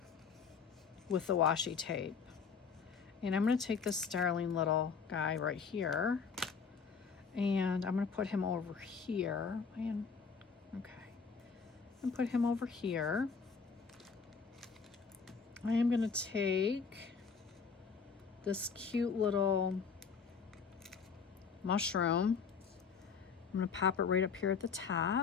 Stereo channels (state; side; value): quieter; right; 5.7 dB